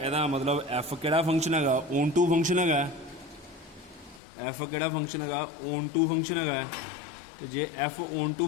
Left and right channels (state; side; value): drops out; right; at 4.2 s